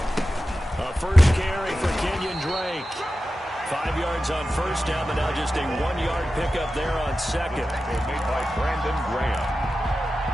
A first carry for Kenyon Drake. 5 yards on first down, but now just a 1-yard pickup there on second. Made by Brandon Graham.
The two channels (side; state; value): both; normal; correlation 0.93